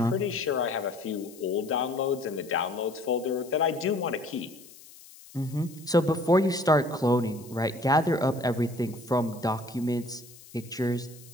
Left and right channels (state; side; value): noise; left; hiss, 21 dB below the sound